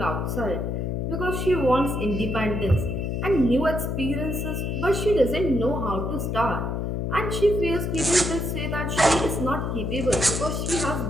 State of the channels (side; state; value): left; noise; hum, 1 dB below the sound